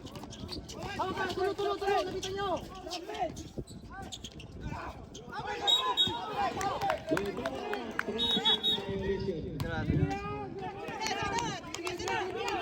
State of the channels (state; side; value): identical; both; correlation 1.00